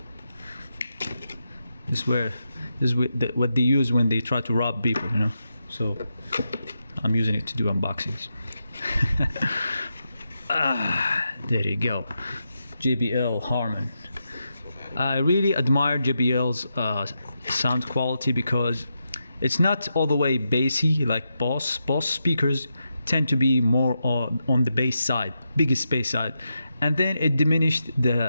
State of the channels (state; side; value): inverted; both; correlation -0.86